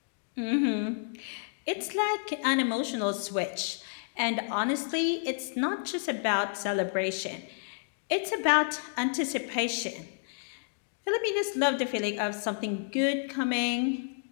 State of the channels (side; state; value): right; silent; digital silence